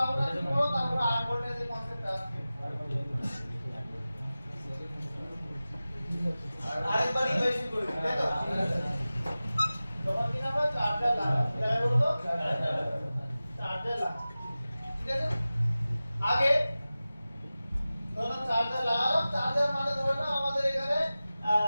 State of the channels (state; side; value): inverted; both; correlation -0.96